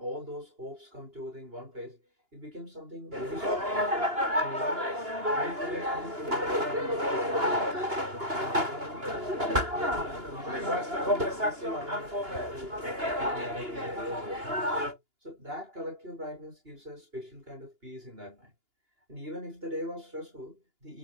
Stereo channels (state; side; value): late; left; 2.9 ms